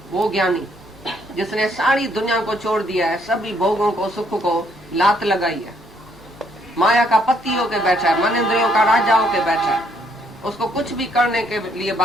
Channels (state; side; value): normal; both; correlation 0.69